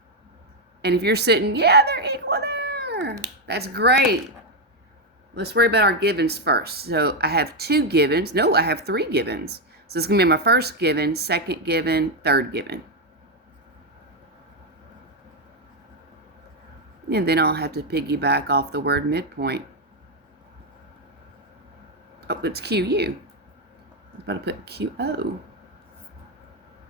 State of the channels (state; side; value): normal; both; correlation 0.04